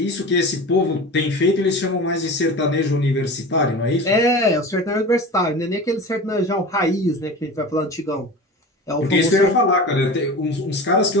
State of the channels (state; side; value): normal; both; correlation 0.33